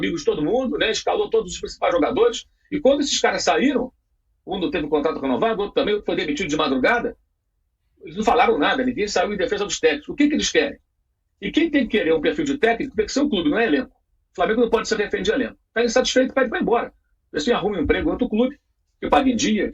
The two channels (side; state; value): both; identical; correlation 1.00